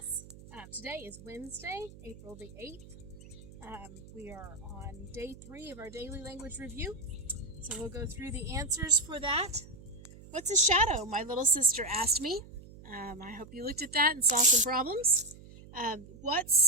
Today is Wednesday, April the 8th. We are on day 3 of our daily language review. So we'll go through the answers for that. What's a shadow? My little sister asked me. I hope you looked at that and saw some problems.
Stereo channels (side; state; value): right; noise; hum, 18 dB below the sound